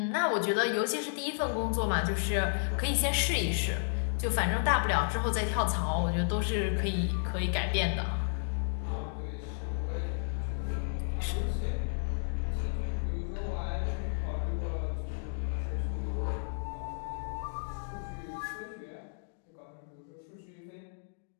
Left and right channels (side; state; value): right; silent; digital silence